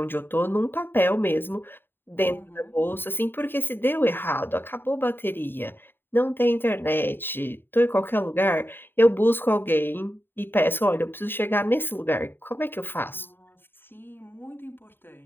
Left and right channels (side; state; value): right; late; 0.098 ms